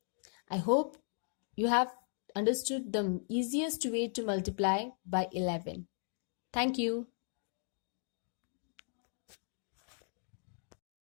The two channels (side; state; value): right; silent; 53 dB below the other